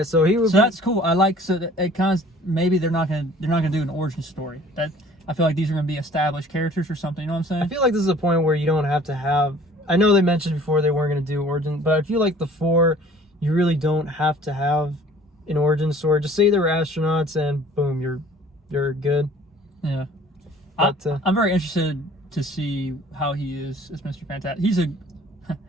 so he would So that's cool. I like, so that it kind of, maybe they're not gonna do an origin story. I feel like these are gonna be established characters or something, you know what I'm saying? I feel like this is a point where you don't have to have... I know they mentioned before they weren't going to do origin, but I feel like the 4, you really don't have to have an origin story. Just say they were astronauts and boom, you're good. Yeah. But, I'm very interested to see how he is as Mr. Fantastic.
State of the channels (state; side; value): normal; both; correlation 0.51